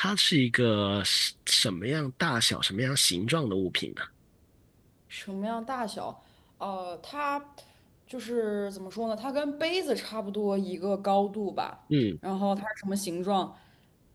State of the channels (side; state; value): both; identical; correlation 1.00